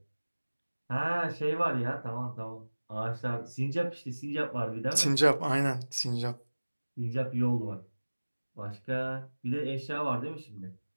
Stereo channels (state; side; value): inverted; both; correlation -1.00